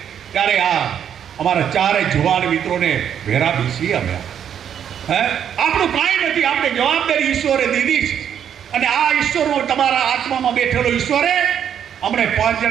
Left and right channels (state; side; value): quieter; left; 8.9 dB